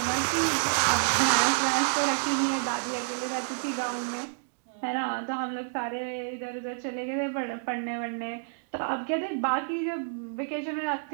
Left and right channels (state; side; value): silent; left; digital silence